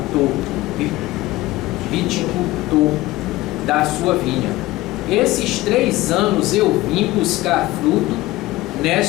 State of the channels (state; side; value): quieter; right; 18.2 dB